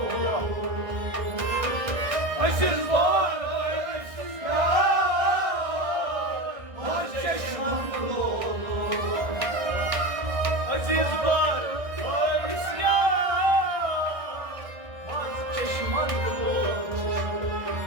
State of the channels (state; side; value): late; left; 1.6 ms